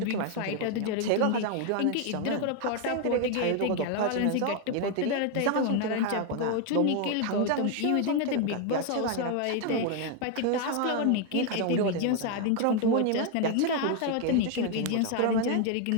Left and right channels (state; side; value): different; both; correlation 0.01